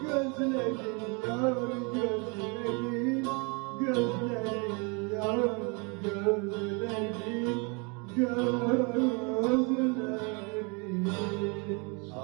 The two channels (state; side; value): quieter; left; 32.0 dB